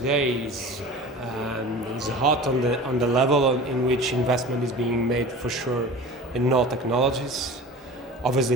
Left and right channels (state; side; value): normal; both; correlation 0.37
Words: is hot on the level in which investment is being made for sure in all technologies.